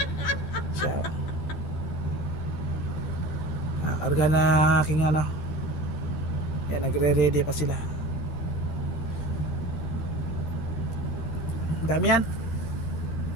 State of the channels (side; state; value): right; late; 12 ms